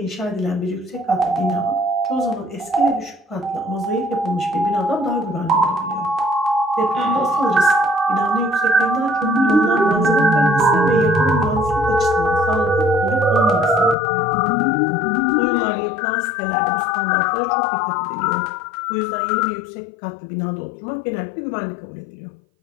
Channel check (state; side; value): drops out; right; at 14.0 s